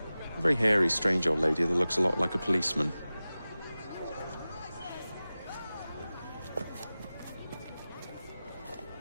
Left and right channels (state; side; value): inverted; both; correlation -0.96